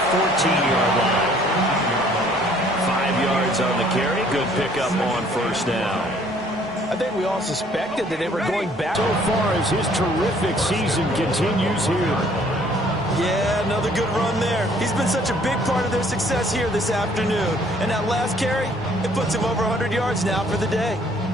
14-yard line. 5 yards on the carry. Good pickup on first down. I think we all suspected that they were going back. So far as his terrific season continues here. Yeah, another good run there. He's been such a big part of their success here this afternoon. And that last carry, it puts him over 100 yards now for the day.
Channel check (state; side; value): normal; both; correlation 0.60